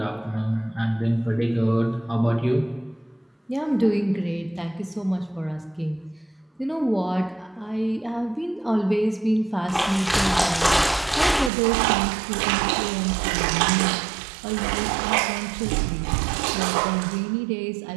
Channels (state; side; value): drops out; left; at 11.5 s